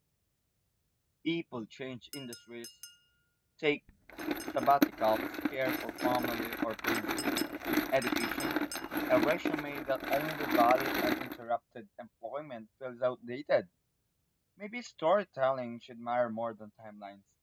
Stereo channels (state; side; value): identical; both; correlation 1.00